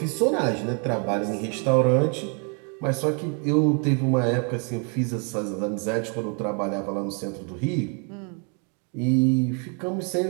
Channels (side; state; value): left; quieter; 38.8 dB